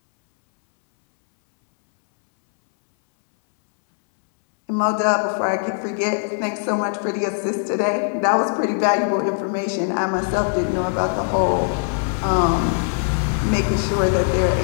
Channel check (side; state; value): right; silent; 65 dB below the other